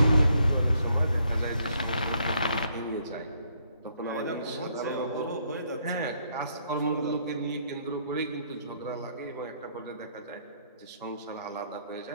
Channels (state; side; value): inverted; both; correlation -0.70